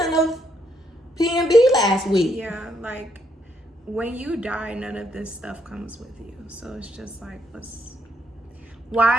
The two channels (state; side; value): normal; both; correlation 0.74